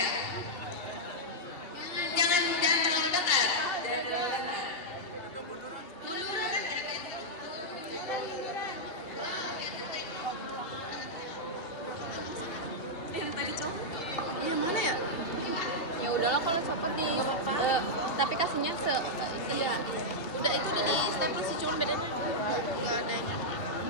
Jangan terlalu ketat. Yang tadi copot. Yang mana ya? Ya udahlah kalau copot di tapi kasihnya iya. Udah itu udah di stempel sih cuma beda. Enggak ada.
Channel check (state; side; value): late; right; 2.7 ms